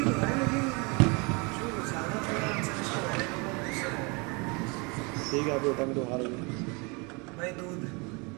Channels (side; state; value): left; quieter; 29.9 dB